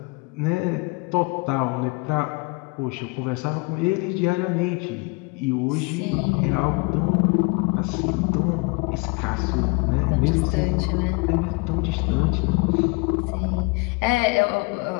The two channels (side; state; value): right; quieter; 27.9 dB